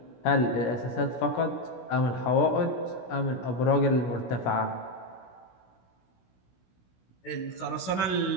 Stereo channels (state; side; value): late; right; 16 ms